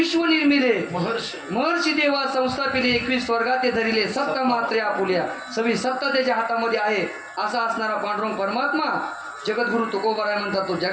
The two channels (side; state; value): both; identical; correlation 1.00